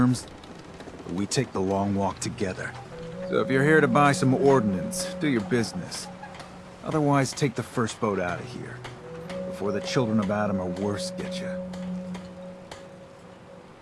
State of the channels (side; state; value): both; identical; correlation 1.00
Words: or we take the long walk together. So if you're here to buy some ordnance, do your business. Otherwise, take the first boat out of here. Before the children of Adam or worse get you.